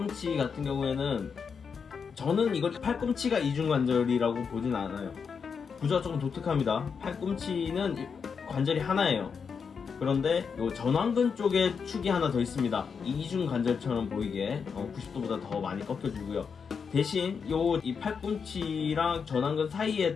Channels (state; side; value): quieter; right; 6.1 dB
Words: 같은 경우에는 저는 이걸 팔꿈치가 이중관절이라고 보진 않아요. 구조가 조금 독특합니다. 팔꿈치는 관절이 하나예요. 그런데 요 전완근 쪽에 축이 하나 더 있습니다. 이중관절처럼 보이게 90도보다 더 많이 꺾여주고요. 대신 이 팔꿈치랑 전완근 사이에